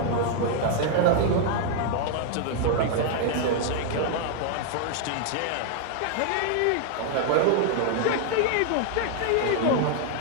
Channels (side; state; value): both; different; correlation 0.00